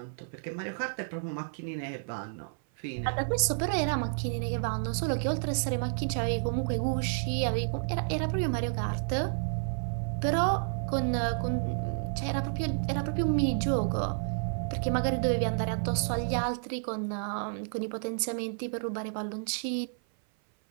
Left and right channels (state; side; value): silent; left; 55 dB below the other